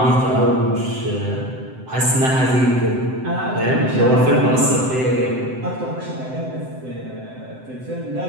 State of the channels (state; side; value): late; left; 7.8 ms